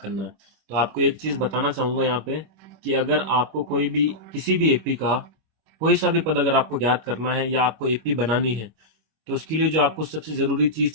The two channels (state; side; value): late; left; 26 ms